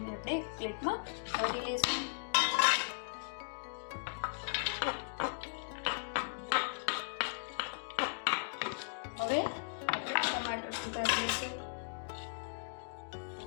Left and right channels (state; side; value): silent; right; digital silence